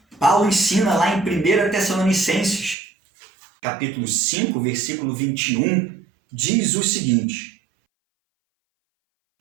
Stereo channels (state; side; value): drops out; left; at 2.8 s